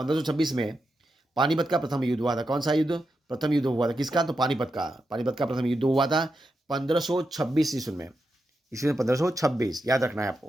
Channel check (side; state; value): both; normal; correlation 0.87